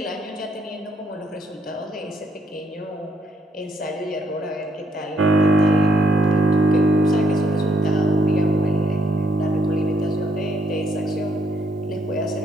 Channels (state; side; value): normal; both; correlation 0.73